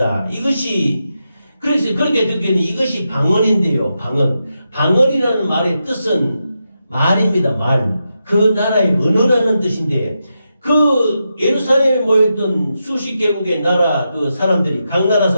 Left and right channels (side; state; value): both; inverted; correlation -0.87